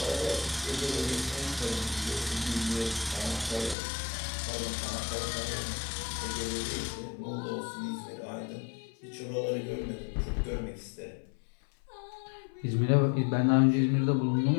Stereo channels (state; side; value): drops out; right; at 3.8 s